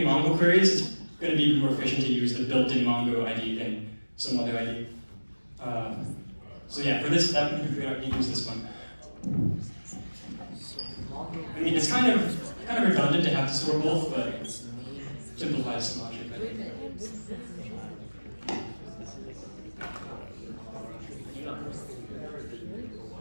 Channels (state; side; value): inverted; both; correlation -1.00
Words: Mongo queries, it's gonna be more efficient to use the built-in Mongo ID than some other ID. So yeah, for this step, we're gonna use this one. I mean, it's kind of kind of redundant to have to store both, but simplifies the logic. This